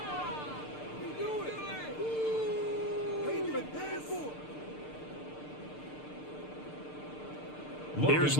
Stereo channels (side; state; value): right; late; 6.7 ms